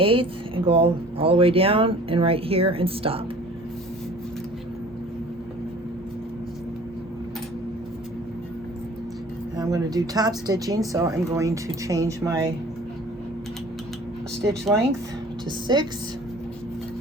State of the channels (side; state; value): both; normal; correlation 0.48